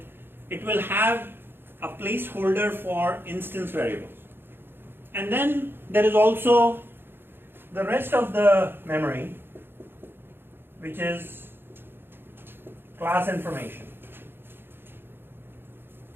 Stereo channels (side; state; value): left; late; 0.10 ms